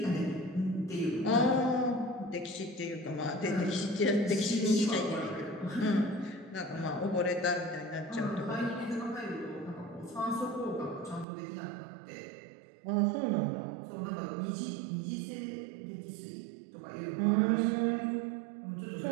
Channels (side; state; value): left; drops out; at 11.2 s